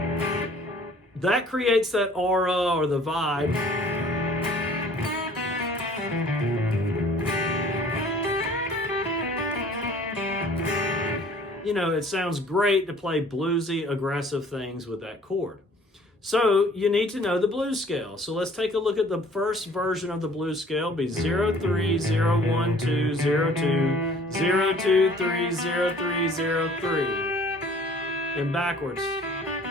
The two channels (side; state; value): both; normal; correlation 0.53